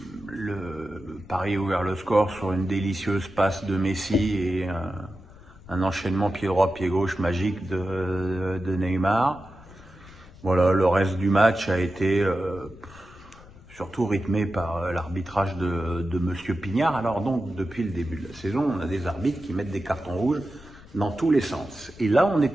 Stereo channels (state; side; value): noise; left; rumble, 21 dB below the sound